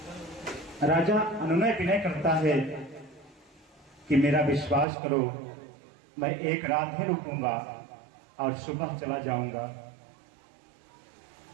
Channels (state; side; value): drops out; left; at 4.9 s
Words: राजा अनुनय विनय करता है कि मेरा विश्वास करो, मैं एक रात ही रुकूंगा और सुबह चला जाऊंगा।